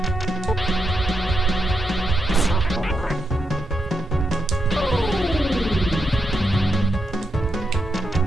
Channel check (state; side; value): normal; both; correlation 0.84